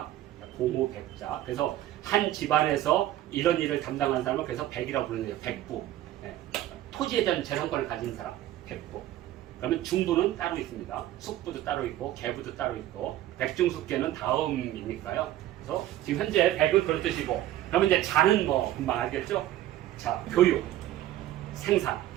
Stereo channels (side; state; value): left; quieter; 13.7 dB